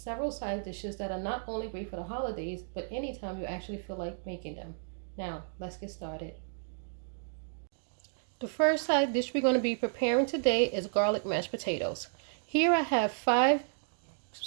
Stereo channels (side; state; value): left; silent; digital silence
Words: side dishes that are not only great for the holidays, but anytime you actually feel like making them. Now, let's get started. The first side dish we're going to be preparing today is garlic mashed potatoes. Here I have 5